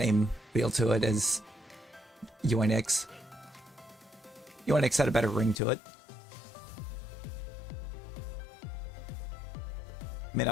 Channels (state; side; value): drops out; right; at 5.6 s